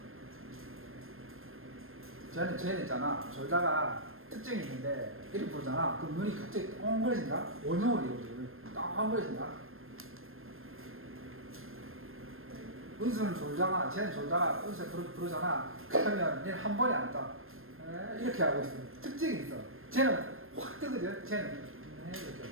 쟤는 있잖아. 졸다가 특징이 있는데 이렇게 부르잖아. 그럼 눈이 갑자기 엉거려진다? 원형으로 이루어져. 딱 엉거려진다. 은수는 졸다가, 쟤는 졸다가 은수 부르잖아. 그러면 얘는 한 번에 안 떠. 이렇게 하고 있어. 특징이 있어. 쟤는 확 뜨거든. 쟤는 이렇게.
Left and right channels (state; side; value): late; left; 0.60 ms